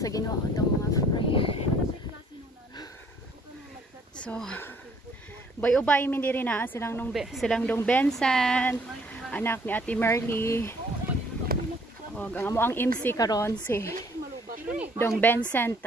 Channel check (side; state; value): both; normal; correlation 0.61